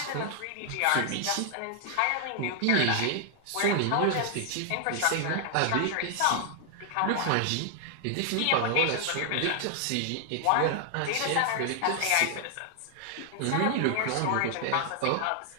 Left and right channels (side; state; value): both; different; correlation 0.00